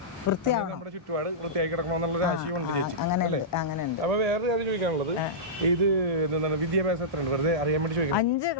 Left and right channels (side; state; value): both; normal; correlation -0.16